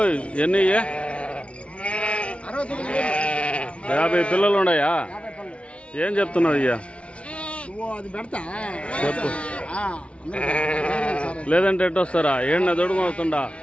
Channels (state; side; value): late; right; 0.061 ms